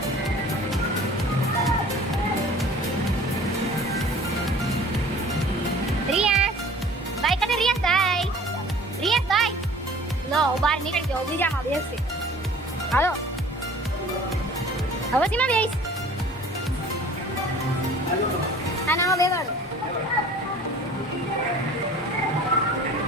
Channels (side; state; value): both; normal; correlation 0.47